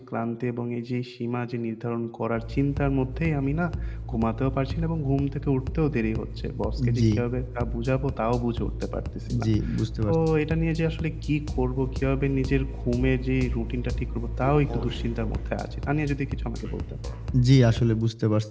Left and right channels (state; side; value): identical; both; correlation 1.00